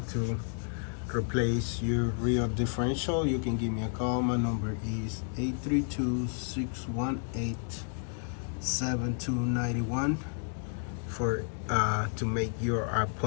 to replace your rear differential, you can give me a call. My number is 832-618-7291 for to make your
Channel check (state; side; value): silent; right; 57 dB below the other